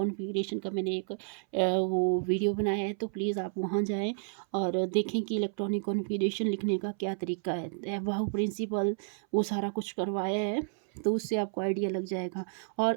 का मैंने एक वो वीडियो बनाया है, तो प्लीज़ आप वहाँ जाएं और देखें कि इलेक्ट्रॉनिक कॉन्फ़िगरेशन लिखने का क्या तरीका है। वाहू प्रिंसिपल वो सारा कुछ करवाया है, तो उससे आपको आइडिया लग जाएगा। और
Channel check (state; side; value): silent; left; 57 dB below the other